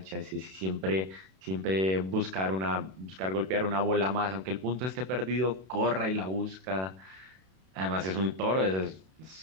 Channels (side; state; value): left; late; 32 ms